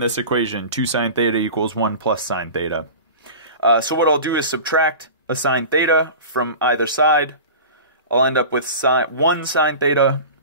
this equation. 2 sine theta equals 1 plus sine theta. So what I'll do is subtract a sine theta from either side. I'll end up with 1 sine theta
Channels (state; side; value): inverted; both; correlation -0.35